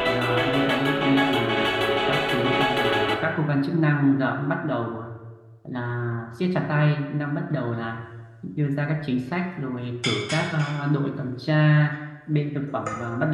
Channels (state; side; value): identical; both; correlation 1.00